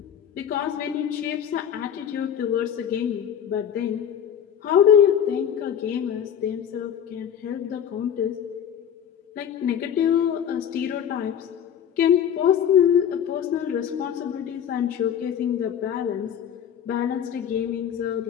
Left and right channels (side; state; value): right; quieter; 8.9 dB